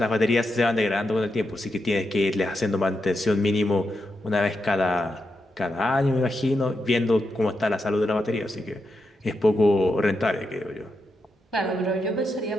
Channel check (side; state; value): both; normal; correlation 0.85